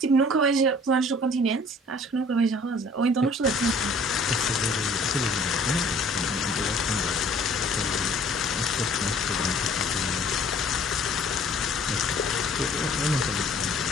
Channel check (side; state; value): both; normal; correlation 0.53